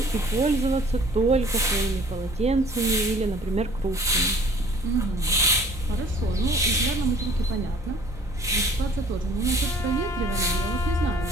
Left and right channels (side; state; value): both; normal; correlation 0.53